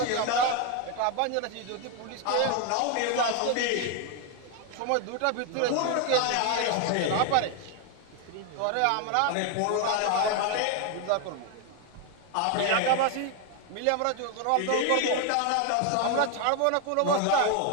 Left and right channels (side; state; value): both; different; correlation 0.01